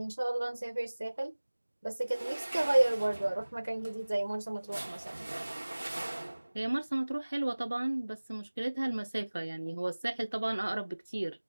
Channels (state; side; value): inverted; both; correlation -1.00